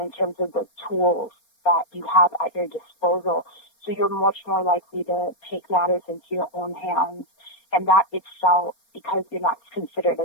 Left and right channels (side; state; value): right; late; 4.3 ms